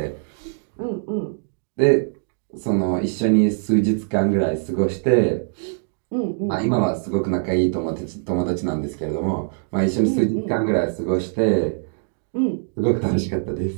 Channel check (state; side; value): silent; left; digital silence